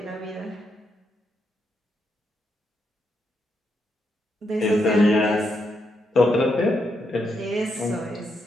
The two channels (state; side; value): normal; both; correlation 0.81